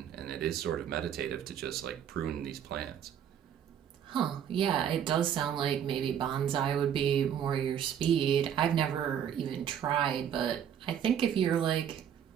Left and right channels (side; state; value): left; quieter; 9.1 dB